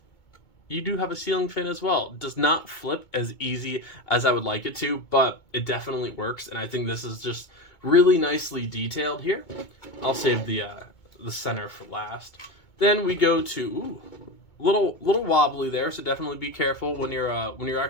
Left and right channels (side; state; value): right; late; 2.2 ms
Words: you do have a ceiling fan as well. It does not flip as easy as I would like it to, but it definitely works, and I think this is just really nicely detailed here. I'll save the center for last. Then we go to little wobbly there, so definitely be careful when you're